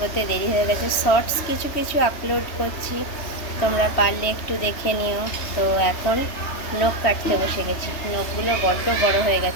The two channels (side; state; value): right; late; 3.2 ms